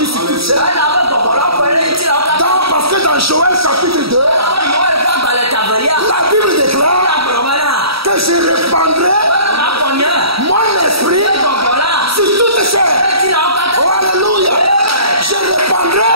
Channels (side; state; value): left; late; 0.76 ms